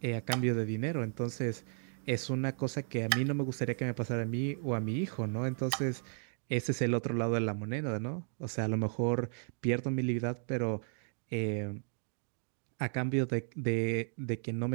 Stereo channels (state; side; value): silent; left; 55 dB below the other